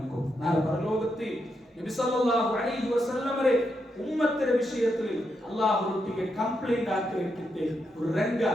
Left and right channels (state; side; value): normal; both; correlation 0.83